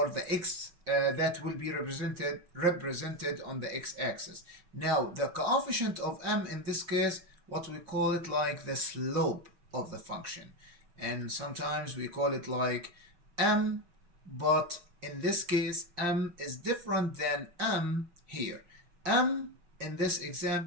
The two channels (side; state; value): left; late; 5.6 ms